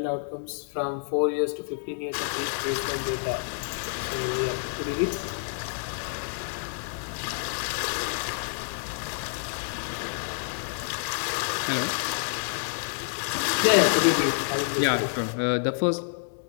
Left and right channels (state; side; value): silent; right; digital silence